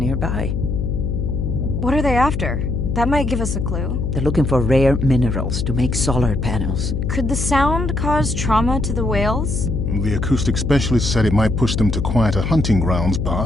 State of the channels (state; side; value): noise; left; hum, 1 dB below the sound